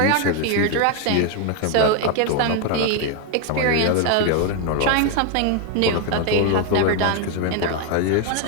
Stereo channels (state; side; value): different; both; correlation 0.01